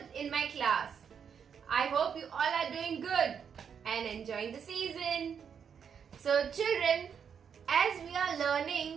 in my class. I hope you all are doing good and enjoying the season. So children, as we are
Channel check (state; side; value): quieter; left; 7.3 dB